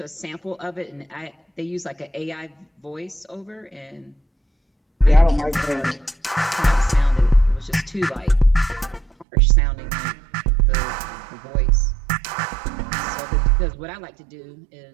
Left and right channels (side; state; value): left; drops out; at 9.2 s